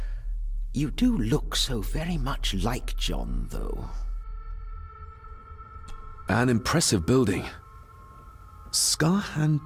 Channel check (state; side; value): identical; both; correlation 1.00